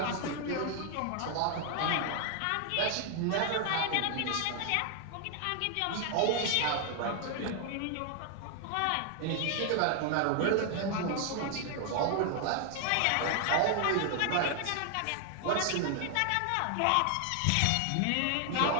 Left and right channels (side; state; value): both; different; correlation 0.00